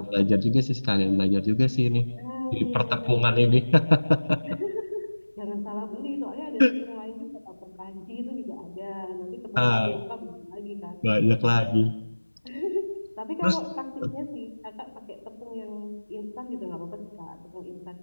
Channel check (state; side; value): inverted; both; correlation -1.00